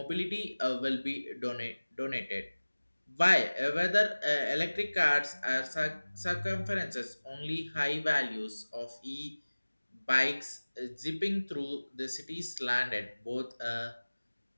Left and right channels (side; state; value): both; inverted; correlation -1.00